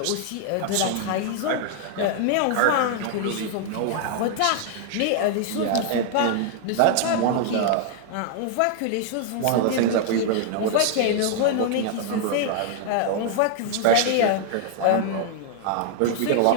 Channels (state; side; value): different; both; correlation 0.00